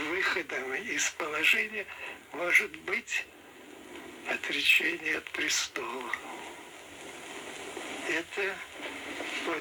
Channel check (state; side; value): identical; both; correlation 1.00